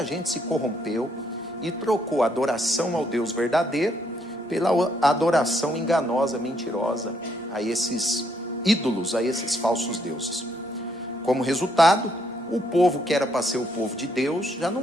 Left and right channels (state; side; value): normal; both; correlation 0.73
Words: gente se corrompeu e trocou a adoração ao Deus verdadeiro pela adoração enganosa, mentirosa a esses ídolos, a esses falsos deuses. Como resultado, o povo que era para ser o povo de Deus já